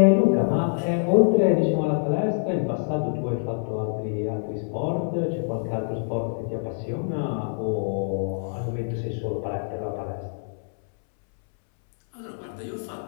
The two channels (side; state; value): right; silent; 61 dB below the other